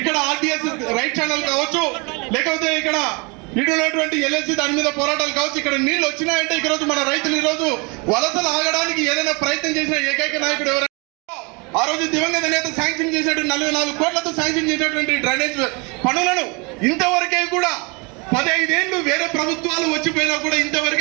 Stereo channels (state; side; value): quieter; left; 29.8 dB